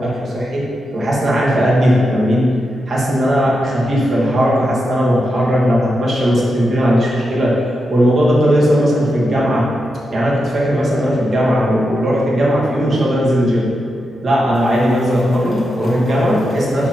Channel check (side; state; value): both; normal; correlation 0.87